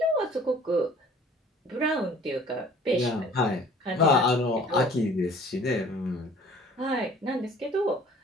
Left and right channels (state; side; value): normal; both; correlation 0.51